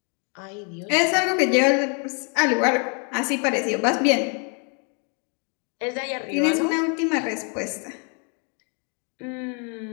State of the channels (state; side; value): quieter; right; 38.3 dB